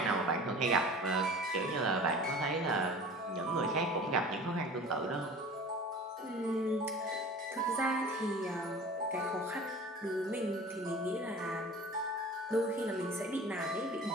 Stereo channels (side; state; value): both; normal; correlation 0.41